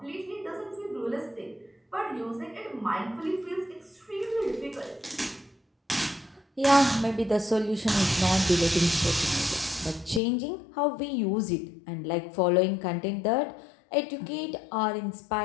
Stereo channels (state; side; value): drops out; right; at 10.2 s